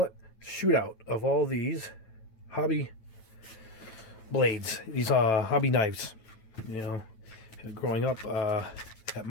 it, shootout of all these hobby blades. These are hobby knives. You know, growing up at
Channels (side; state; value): right; late; 9.1 ms